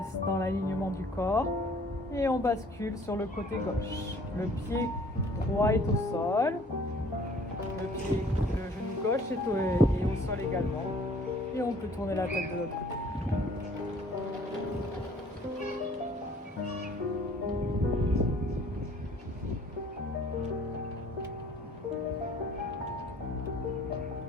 dans l'alignement du corps et on bascule sur le côté gauche. Le pied droit est au sol, le genou gauche est au sol également Et on peut tourner la tête de l'autre côté.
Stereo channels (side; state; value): both; normal; correlation 0.55